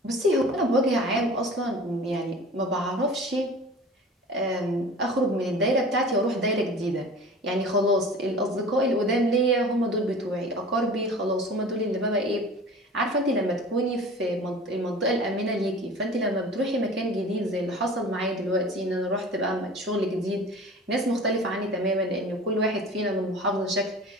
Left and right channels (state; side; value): normal; both; correlation 0.40